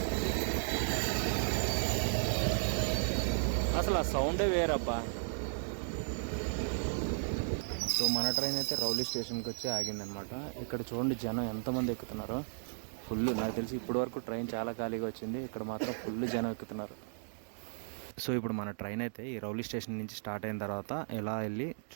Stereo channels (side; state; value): left; silent; digital silence